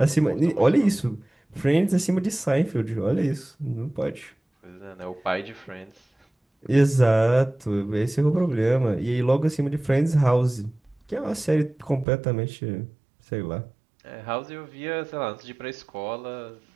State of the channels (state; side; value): drops out; left; at 12.1 s